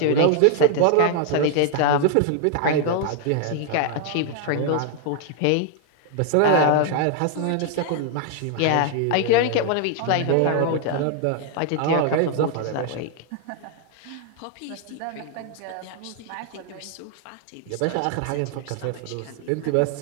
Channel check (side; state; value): both; different; correlation 0.00